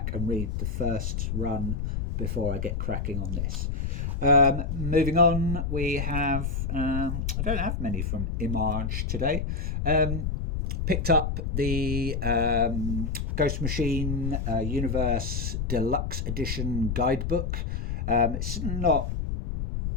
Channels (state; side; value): noise; left; rumble, 2 dB below the sound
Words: and read the first run before I get cracking on this. Moving on, we have, I don't have many from Image today. Picked up the Ghost Machine Universe Deluxe Edition guidebook. It's not